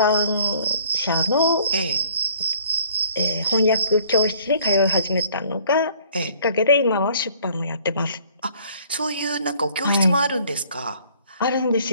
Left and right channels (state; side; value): inverted; both; correlation -0.57